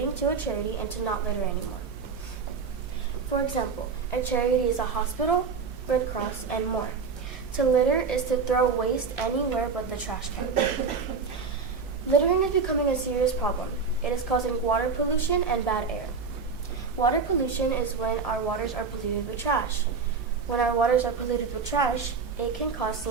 to a charity and to not litter anymore. For example, a charity is a hospital, Red Cross, and more. To litter is to throw waste anywhere but the trash can. Littering is becoming a serious problem. It is causing water pollution and bad air. Water pollution is when our waters are polluted with trash. When our waters are polluted with trash, it can cause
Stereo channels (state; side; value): quieter; left; 5.2 dB